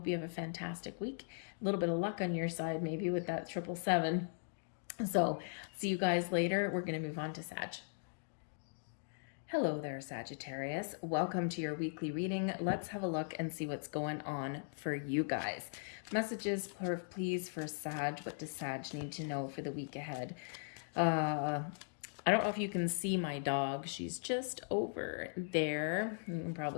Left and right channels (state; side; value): silent; right; digital silence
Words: you have a fantastic week. A little bit of luck on your side, maybe with that 777. So see you guys later. We're going to move on to Sag. Hello there, Sagittarius. Welcome to your weekly reading. Let's have a look and see what's going on for you guys. Messages, please, for Sag. What does Sag need to know for the week ahead? I don't know if you can see my dog. She's just over there. You can